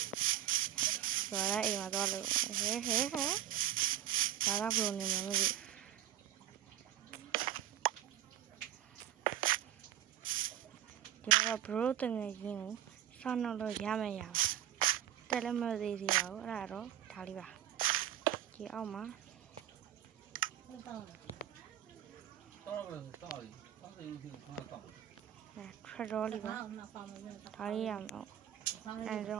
ဆိုတော့အိမ်မှာတော့လို့ဟဲဒါကဘယ်လိုနေမှာမသိဒီတော့ဘရိုတငယ်ချင်းကိုဆောင်းတော့ရမယ်ရပါတက်လည်းမသေးသေးပါဘူးအဲ့ဒါတော့ဒါလေးပါဒီအောက်မှာထရတော်လေးပါဒါလေးရအောင်အဲ့တော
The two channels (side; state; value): left; quieter; 11.6 dB